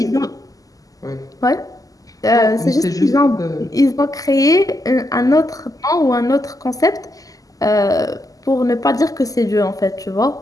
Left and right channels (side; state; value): right; late; 0.17 ms